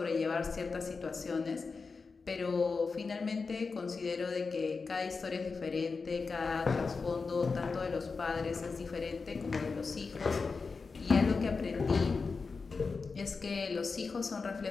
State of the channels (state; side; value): quieter; right; 4.6 dB